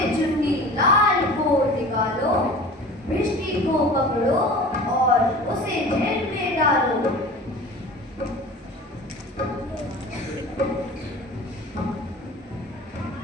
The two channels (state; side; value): normal; both; correlation 0.39